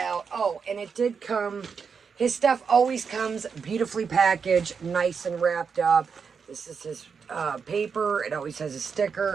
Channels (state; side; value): quieter; left; 6.0 dB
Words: oh, and it did come, his stuff always comes beautifully packaged, nice and wrapped up. This is his paper. It always has a